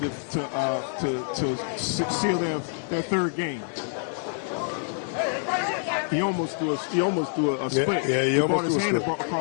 to seal their third game. He almost threw a split. Yeah, he brought his hand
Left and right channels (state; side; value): silent; right; digital silence